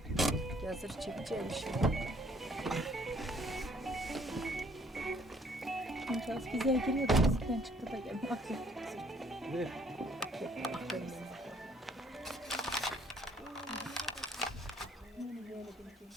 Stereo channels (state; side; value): normal; both; correlation 0.63